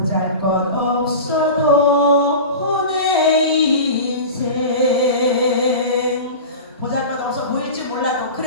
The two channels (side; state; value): both; inverted; correlation -0.31